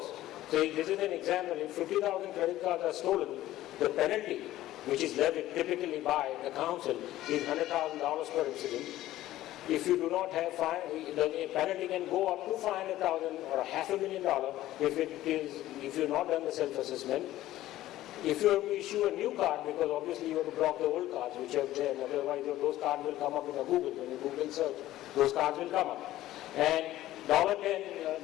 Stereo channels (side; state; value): right; quieter; 14.8 dB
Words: So this is an example. If 50,000 credit cards are stolen, the penalty, which is levied typically by the council, is $100,000 per incident. If you do not have the penalty can go up to $500,000 or $500,000 if you've not done the self-assessment. If you have to issue a new card, because obviously you have to block the old cards which are there, otherwise those cards will come up in a Google. When you Google search, those cards will come up. And